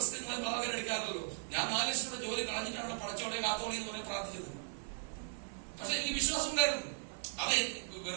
നിങ്ങൾ ഭാഗം എടുക്കാറില്ലല്ലോ. ഞാൻ 4 ലക്ഷം രൂപ ജോലി കളഞ്ഞിട്ടാണ് പടച്ചോടെ കാത്തോളി എന്ന് പറയാൻ പ്രാർത്ഥിച്ചത്. പക്ഷെ എനിക്ക് വിശ്വാസം ഉണ്ടായിരുന്നു. അത്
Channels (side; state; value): left; silent; 53 dB below the other